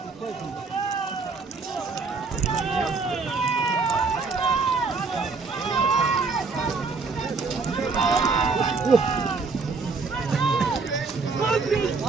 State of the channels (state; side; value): quieter; left; 4.4 dB